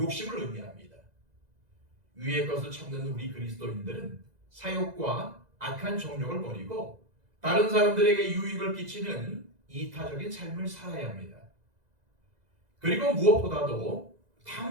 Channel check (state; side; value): late; left; 2.0 ms